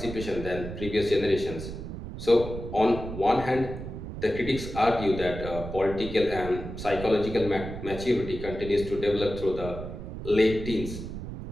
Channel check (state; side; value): noise; right; rumble, 8 dB below the sound